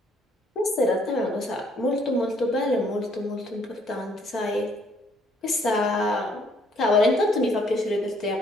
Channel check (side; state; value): both; normal; correlation 0.65